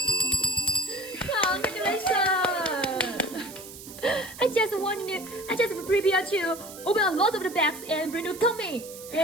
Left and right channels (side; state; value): right; noise; hiss, 15 dB below the sound